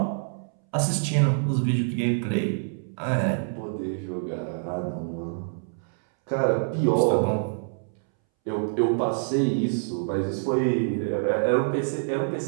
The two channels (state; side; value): silent; left; 61 dB below the other